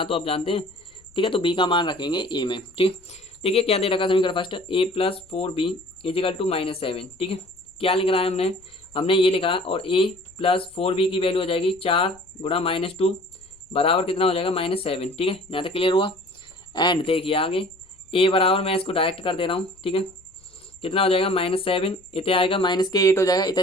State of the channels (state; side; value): noise; left; rumble, 30 dB below the sound